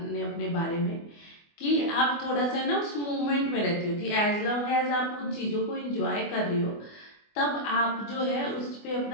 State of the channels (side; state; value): right; late; 24 ms